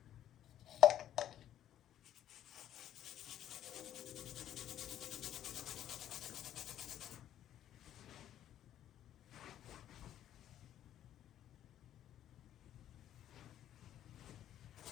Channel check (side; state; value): right; quieter; 11.4 dB